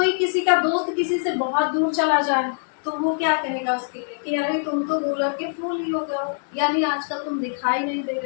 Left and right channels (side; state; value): right; silent; digital silence